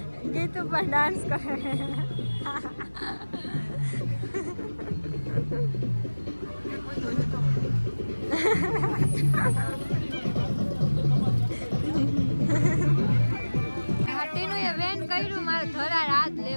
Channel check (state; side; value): inverted; both; correlation -1.00